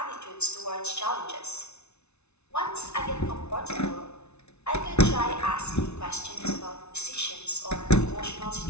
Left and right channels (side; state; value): right; late; 0.81 ms